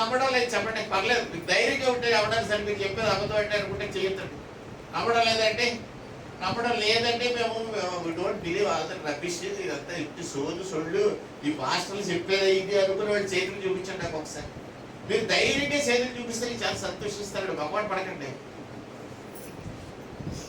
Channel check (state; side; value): identical; both; correlation 1.00